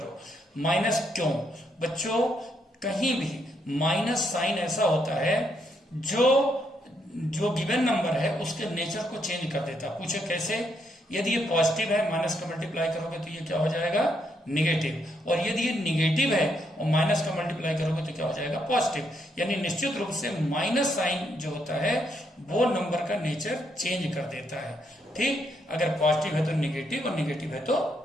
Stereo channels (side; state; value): both; normal; correlation 0.76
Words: माइनस क्यों बच्चों? कहीं भी माइनस साइन ऐसा होता है जो गिवन नंबर है उसके नेचर को चेंज कर देता है। पूछे कैसे? यदि ये पॉजिटिव है, माइनस का मल्टीप्लाई करोगे तो ये क्या हो जाएगा? निगेटिव। और यदि ये निगेटिव है और माइनस का मल्टीप्लाई करोगे तो क्या हो जाएगा? पॉजिटिव। यानी निश्चित रूप से माइनस साइन जो होता है वो नंबर का नेचर चेंज कर देता है। ठीक, अगर पॉजिटिव है तो निगेटिव और निगेटिव है तो